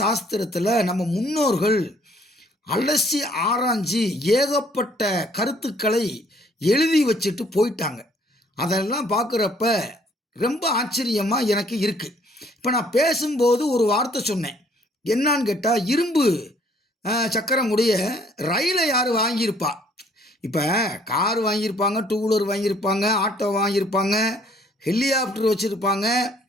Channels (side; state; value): both; normal; correlation 0.61